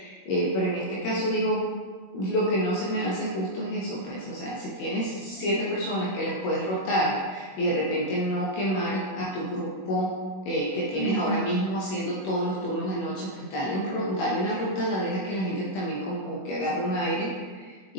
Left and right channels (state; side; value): late; right; 21 ms